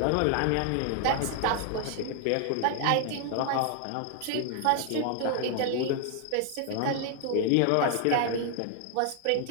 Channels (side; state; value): both; different; correlation 0.00